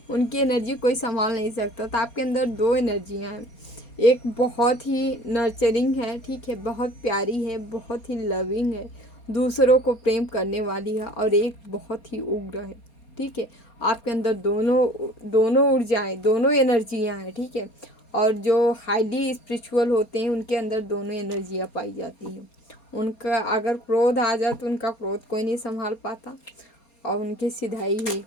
उनकी एनर्जी कोई संभाल नहीं सकता। तो आपके अंदर दो एनर्जियाँ हैं, एक बहुत ही नर्चरिंग है, ठीक है, बहुत प्यारी है, बहुत ही लविंग है, दूसरों को प्रेम करने वाली है, और एक बहुत ही उग्र है, ठीक है। आपके अंदर दोनों ऊर्जाएँ, दोनों एनर्जियाँ हैं, ठीक है। और जो हाईली स्पिरिचुअल होते हैं उनके अंदर दोनों एनर्जियाँ पाई जाती हैं। उनका अगर क्रोध आ जाए तो उनका क्रोध कोई नहीं संभाल पाता, और उनकी सिधाई ही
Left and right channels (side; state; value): right; late; 4.2 ms